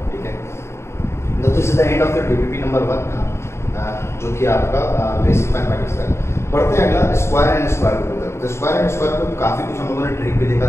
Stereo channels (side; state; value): right; late; 0.13 ms